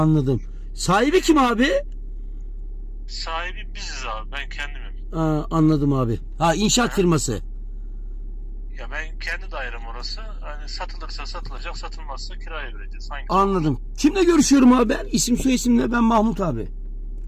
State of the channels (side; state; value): both; identical; correlation 1.00